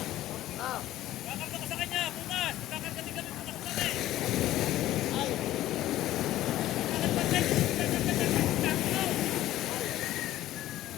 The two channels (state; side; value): quieter; right; 14.4 dB